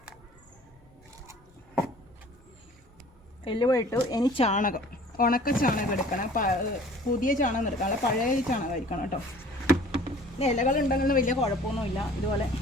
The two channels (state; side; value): normal; both; correlation 0.50